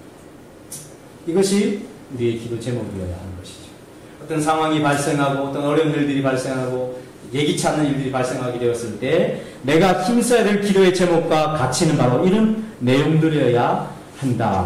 이것이 우리의 기도 제목이어야 하는 것이죠. 어떤 상황이 발생하고 어떤 어려운 일들이 발생하고 예기치 않는 일들이 발생하게 되었을 때 내가 힘써야 될 기도의 제목과 가치는 바로 이런 내용들이어야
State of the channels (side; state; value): both; identical; correlation 1.00